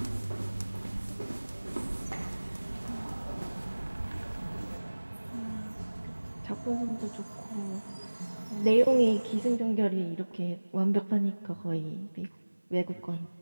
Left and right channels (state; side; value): inverted; both; correlation -1.00